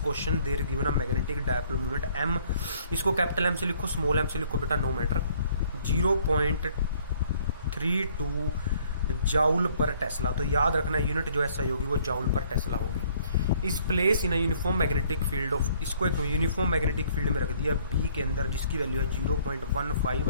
question there is given a magnetic dipole moment M. इसको capital M से लिखो, small m से लिखो बेटा, no matter. 0.32 joule per tesla. तो याद रखना unit जो ऐसा होगी वो जाउल पर टेस्ला होगी। इस place in uniform magnetic field of, इसको एक यूनिफॉर्म मैग्नेटिक फील्ड में रख दिया बी के अंदर, जिसकी वैल्यू है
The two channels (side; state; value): both; inverted; correlation -0.61